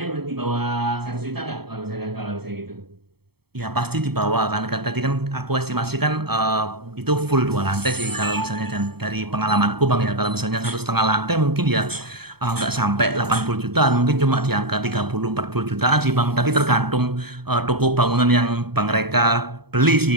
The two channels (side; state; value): left; late; 0.97 ms